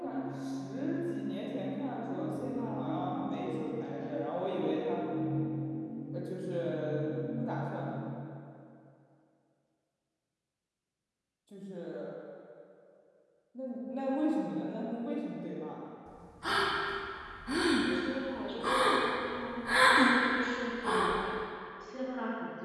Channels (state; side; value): identical; both; correlation 1.00